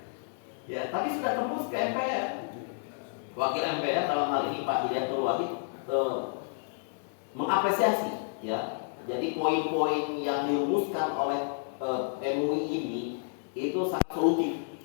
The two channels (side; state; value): right; silent; 57 dB below the other